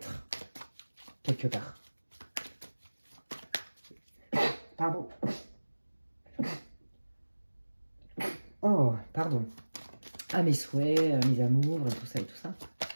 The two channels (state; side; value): inverted; both; correlation -1.00